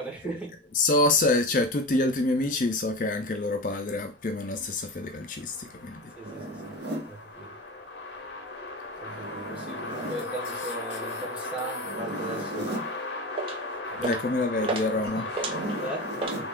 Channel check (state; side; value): normal; both; correlation 0.25